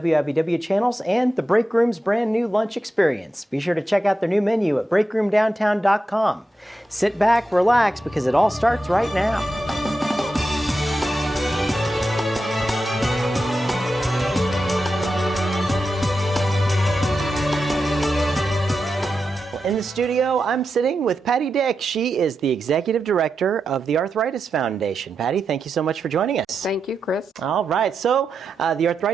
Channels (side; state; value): both; normal; correlation 0.89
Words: channels and the Break Room's brand new lunch experience. Be sure to check out their new menu at breakroomdowntown.com. Sit back, relax, because it all starts right now. In the studio, I'm sitting with Patty Dick. She is the Executive Director of the Arthritis Foundation. Patty, thank you so much for joining us. Thank you, Chris. All right, so the